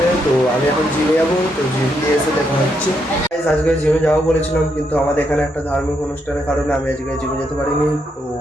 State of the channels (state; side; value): normal; both; correlation 0.78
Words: তো আমি এখন জিমে যাবো, তো জিম দিয়ে এসে দেখা হচ্ছে। গাইস আজকে জিমে যাবো বলেছিলাম, কিন্তু আমাদের এখানে একটা ধার্মিক অনুষ্ঠানের কারণে আমি আজকে জিমে যেতে পারিনি। তো